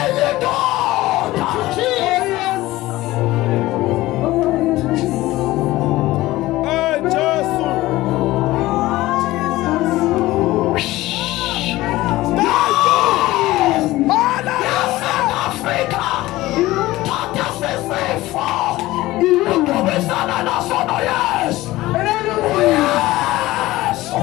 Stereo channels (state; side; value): quieter; right; 17.7 dB